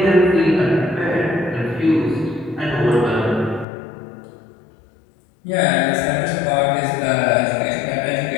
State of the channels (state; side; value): drops out; right; at 3.7 s